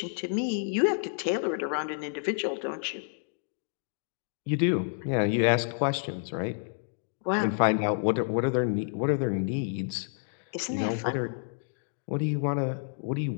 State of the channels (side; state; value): right; silent; digital silence